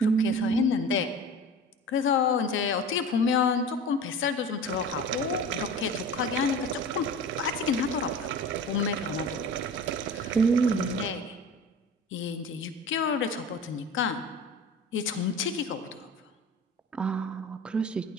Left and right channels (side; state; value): both; normal; correlation 0.36